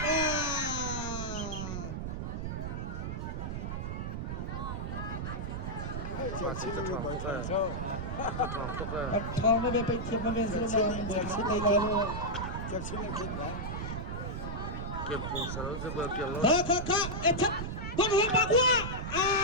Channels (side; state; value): right; noise; rumble, 4 dB below the sound